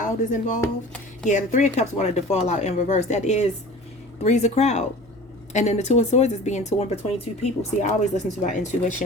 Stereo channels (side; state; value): left; noise; hum, 28 dB below the sound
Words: is involved. Yeah, the Three of Cups wanted to fall out in reverse. That is three's a crowd. And then the Two of Swords is being torn between two people. See, I always listen to my